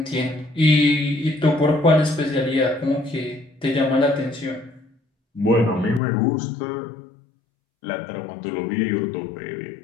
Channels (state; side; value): drops out; right; at 6.0 s